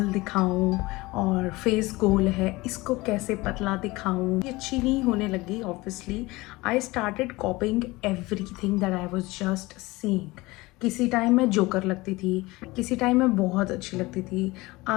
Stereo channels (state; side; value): quieter; right; 21.4 dB